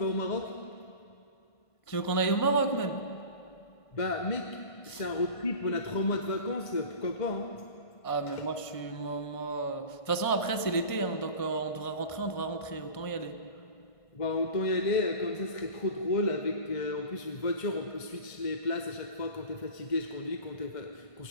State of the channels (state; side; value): late; right; 1.5 ms